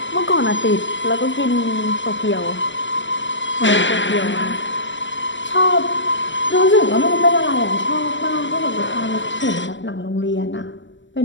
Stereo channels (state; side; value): late; right; 0.54 ms